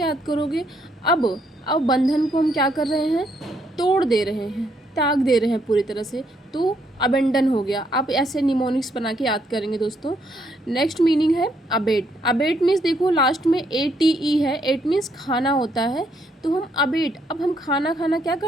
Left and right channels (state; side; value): normal; both; correlation 0.73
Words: याद करोगे? अब बंधन को हम क्या कर रहे हैं? तोड़ दे रहे हैं, त्याग दे रहे हैं पूरी तरह से। तो अबेंडन हो गया। आप ऐसे निमोनिक्स बना के याद करेंगे दोस्तों। नेक्स्ट मीनिंग है अबेट। अबेट मीन्स देखो लास्ट में ATE है। एट मीन्स खाना होता है। तो हम अबेट, अब हम खाना क्या